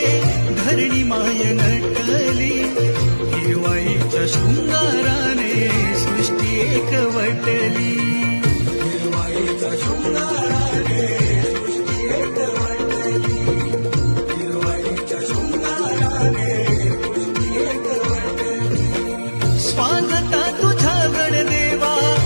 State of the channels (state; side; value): inverted; both; correlation -1.00